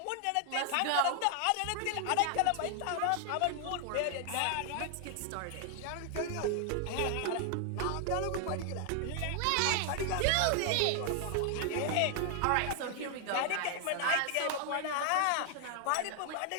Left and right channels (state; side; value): different; both; correlation 0.00